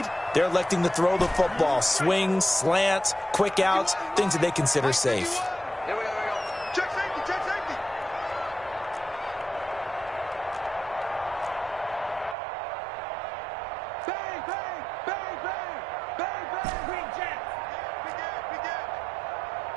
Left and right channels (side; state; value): left; drops out; at 12.4 s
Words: they're electing to throw the football. Swings, slants, quick outs, things that they consider safe. Check safety. Bang. Green Jack. Big air.